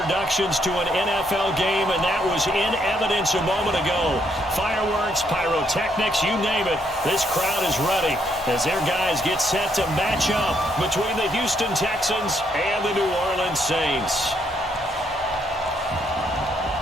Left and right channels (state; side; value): normal; both; correlation 0.73